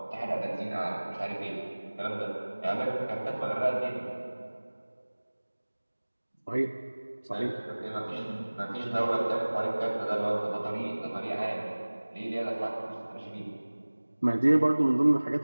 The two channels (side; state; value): both; inverted; correlation -1.00